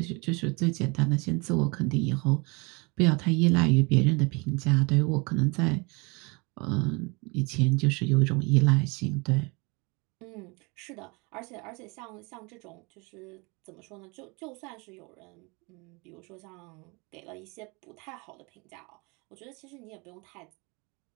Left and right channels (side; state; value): left; quieter; 28.6 dB